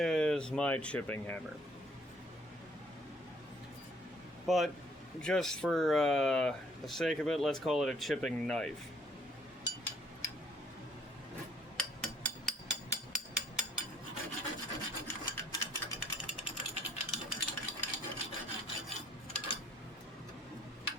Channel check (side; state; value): both; normal; correlation 0.62